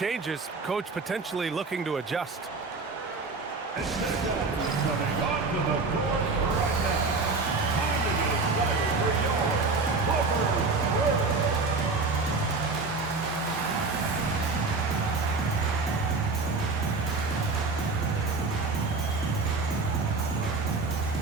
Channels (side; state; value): left; quieter; 4.0 dB